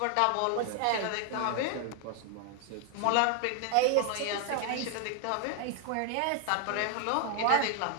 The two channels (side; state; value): both; different; correlation 0.00